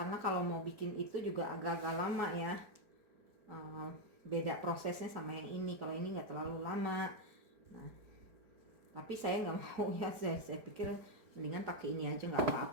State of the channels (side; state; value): left; late; 4.7 ms